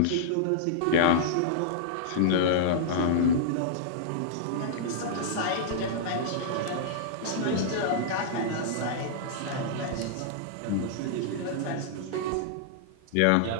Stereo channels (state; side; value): different; both; correlation -0.02